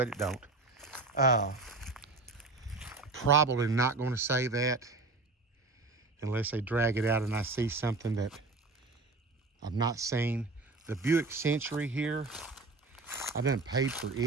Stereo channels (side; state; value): left; quieter; 3.5 dB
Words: it don't. Probably not going to say that unless they drag it out and I see something that I've not seen. The Buick Century here, I done paid for